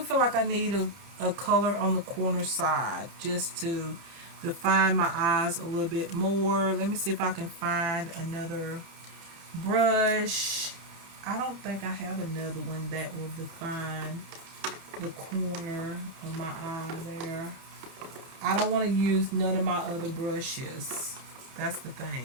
like I need a color on the corner side just to define my eyes a little bit more. Let me see if I can find another brush. I don't think I have another one that will define the corner of my eye there. I don't want to use none of my other brushes. That's the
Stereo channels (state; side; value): late; left; 31 ms